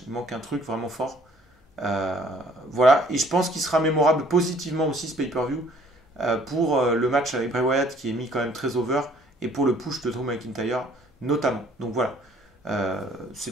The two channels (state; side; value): normal; both; correlation 0.58